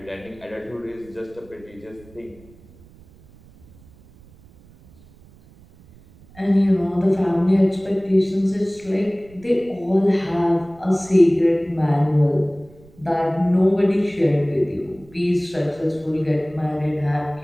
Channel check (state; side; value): noise; right; rumble, 25 dB below the sound